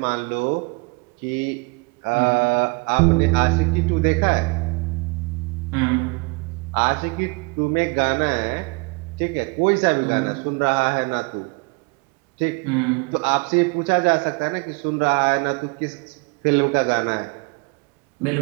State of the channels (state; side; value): quieter; left; 30.3 dB